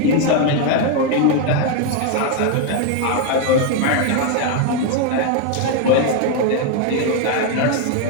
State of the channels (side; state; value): both; different; correlation 0.01